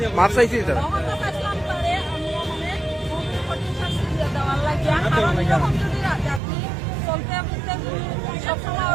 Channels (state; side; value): drops out; left; at 6.4 s